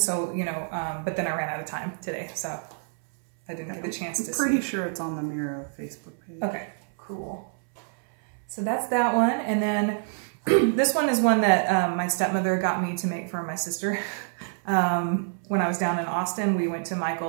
you know, but then I ran out of time today, so I didn't get the chance to see. I'm pretty sure it's on the Mira Facebook page. Okay, cool. So that's that one, and then this one is one that my stepmother got me to make for my sister. When I was down in Austin, we went to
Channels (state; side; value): silent; left; 60 dB below the other